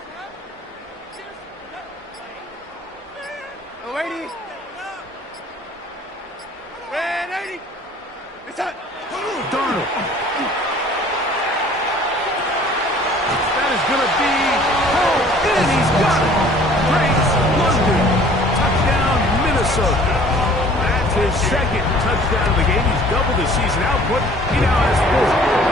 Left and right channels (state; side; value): normal; both; correlation 0.52